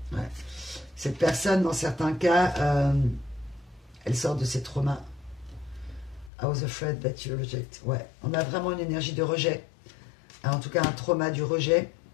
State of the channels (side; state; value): right; drops out; at 6.3 s